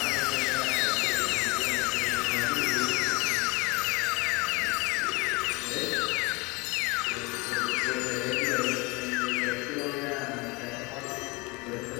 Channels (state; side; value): quieter; right; 26.3 dB